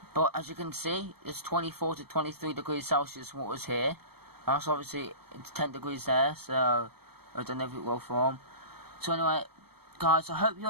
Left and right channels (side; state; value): left; late; 0.96 ms